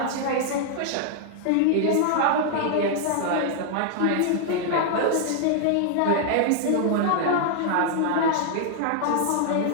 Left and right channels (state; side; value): different; both; correlation -0.01